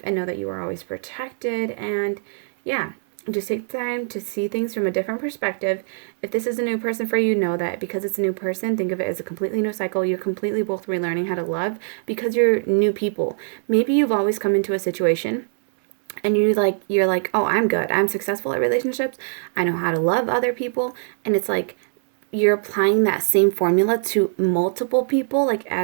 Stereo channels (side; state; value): left; silent; digital silence